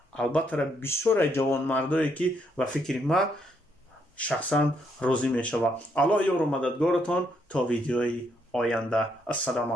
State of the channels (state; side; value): normal; both; correlation 0.74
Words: البته بسیار جوان مردایی که و فکر ما شخصا راضی میشوه. الله یار و مددگارتان تا ویدیوی آینده. السلام